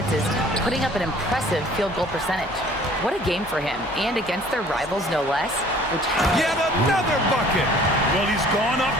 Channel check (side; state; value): both; normal; correlation 0.53